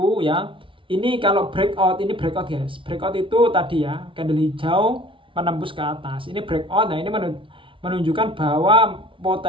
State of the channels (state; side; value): late; left; 0.25 ms